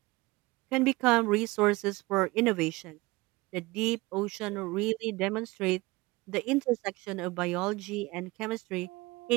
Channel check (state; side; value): quieter; left; 21.8 dB